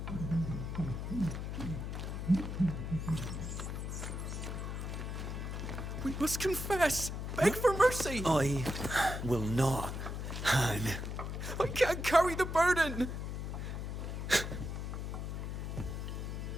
We must confess! Beg for mercy! I will not, Han. I can't carry the burden!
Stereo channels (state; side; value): noise; left; hum, 4 dB below the sound